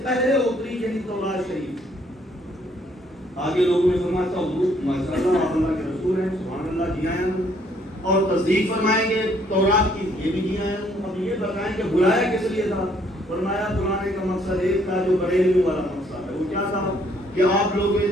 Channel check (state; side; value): normal; both; correlation 0.66